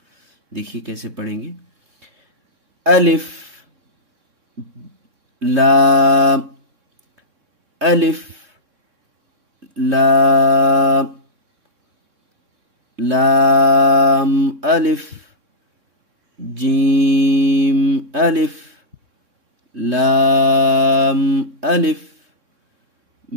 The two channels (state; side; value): late; left; 3.6 ms